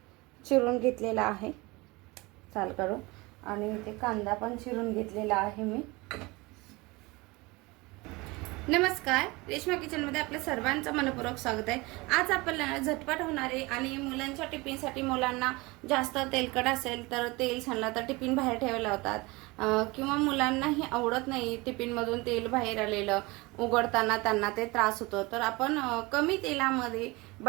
चिरून घेतलेला आहे साल काढून, आणि इथे कांदा पण चिरून घेतलेला आहे मी. नमस्कार, रेश्मा किचनमध्ये आपल्या सर्वांचं मनपूर्वक स्वागत आहे. आज आपल्याला झटपट होणारे आणि मुलांच्या टिफिनसाठी, मुलांना जास्त तेलकट असेल तर तेल सांडला तर टिफिन बाहेर ठेवायला लावतात, किंवा मुलांनाही आवडत नाही टिफिनमधून तेल बाहेर आलेलं, उघडताना त्यांना ते त्रास होतो. तर आपण कमी तेलामध्ये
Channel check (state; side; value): quieter; left; 23.8 dB